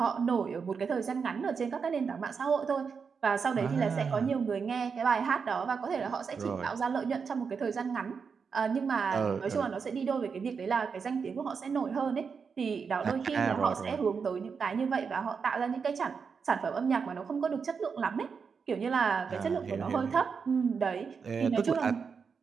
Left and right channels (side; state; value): left; quieter; 5.8 dB